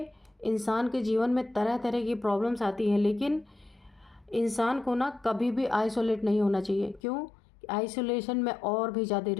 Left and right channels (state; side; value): drops out; right; at 7.0 s